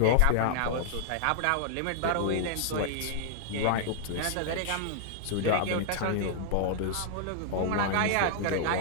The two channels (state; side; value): different; both; correlation -0.01